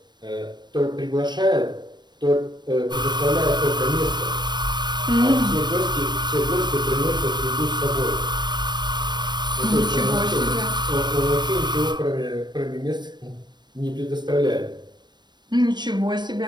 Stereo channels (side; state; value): left; late; 0.21 ms